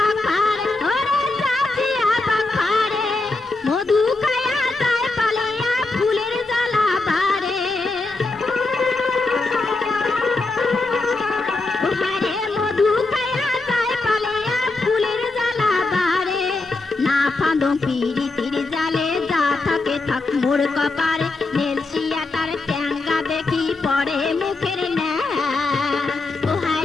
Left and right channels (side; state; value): right; quieter; 3.4 dB